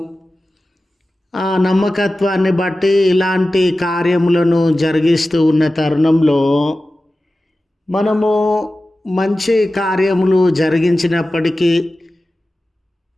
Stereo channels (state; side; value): normal; both; correlation 0.95